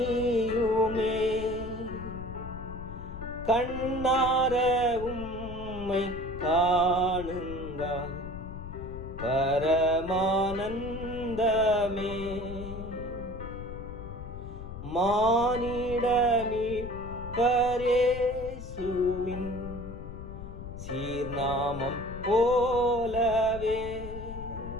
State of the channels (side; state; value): left; noise; rumble, 10 dB below the sound